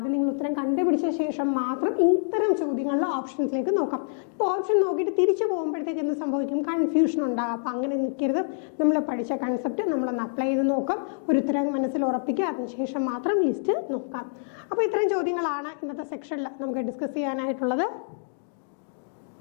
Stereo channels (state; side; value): silent; right; digital silence